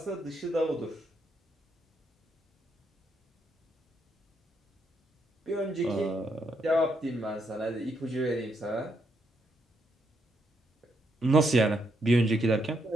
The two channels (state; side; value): normal; both; correlation 0.77